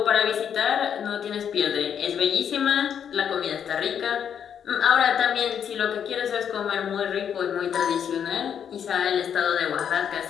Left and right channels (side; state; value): right; quieter; 8.3 dB